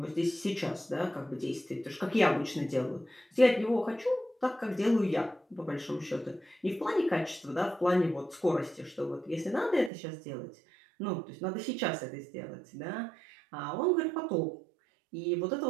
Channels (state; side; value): drops out; left; at 9.9 s